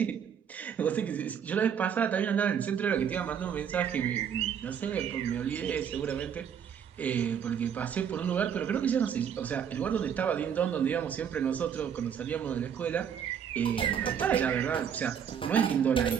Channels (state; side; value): quieter; left; 8.0 dB